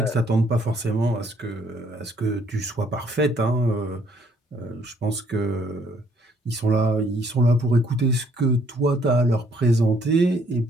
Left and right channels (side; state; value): both; normal; correlation 0.65